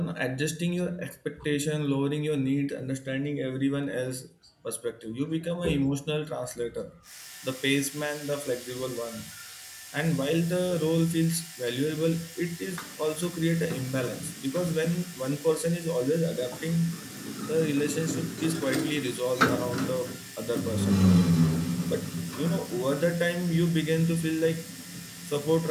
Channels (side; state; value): both; identical; correlation 1.00